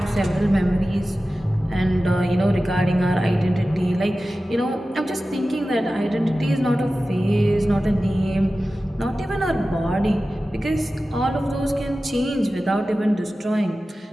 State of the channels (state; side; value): normal; both; correlation 0.95